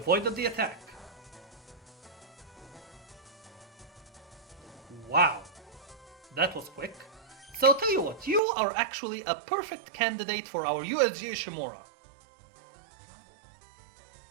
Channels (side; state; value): left; drops out; at 8.4 s